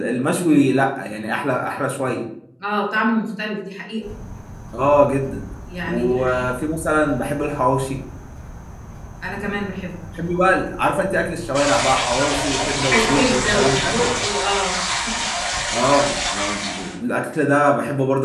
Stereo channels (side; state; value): both; identical; correlation 1.00